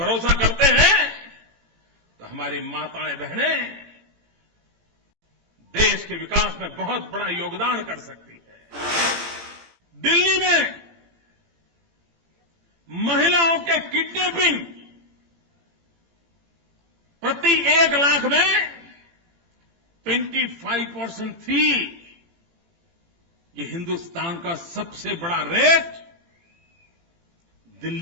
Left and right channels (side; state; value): left; late; 18 ms